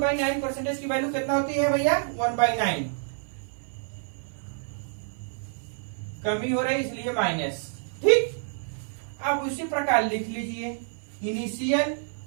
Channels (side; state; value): left; silent; 55 dB below the other